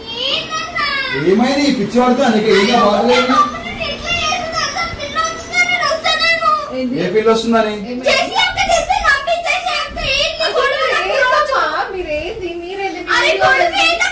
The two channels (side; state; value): both; identical; correlation 1.00